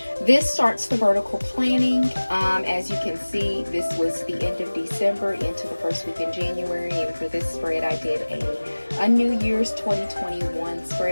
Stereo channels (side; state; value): both; inverted; correlation -1.00